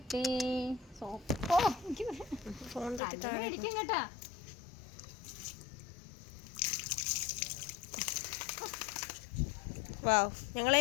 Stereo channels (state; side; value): drops out; right; at 3.0 s